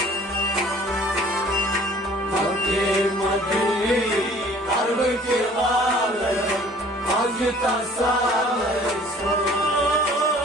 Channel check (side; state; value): both; normal; correlation 0.52